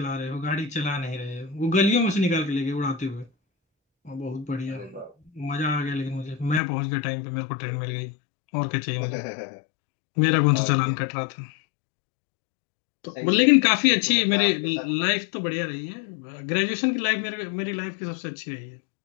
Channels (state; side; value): drops out; right; at 6.6 s